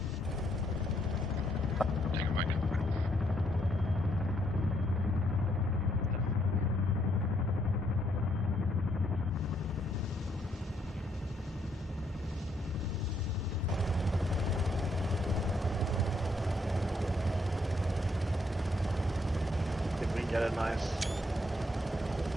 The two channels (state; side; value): normal; both; correlation 0.73